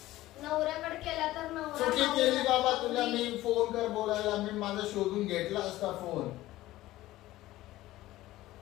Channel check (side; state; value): right; quieter; 16.3 dB